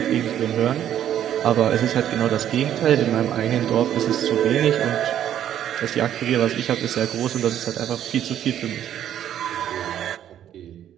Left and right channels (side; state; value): left; quieter; 10.7 dB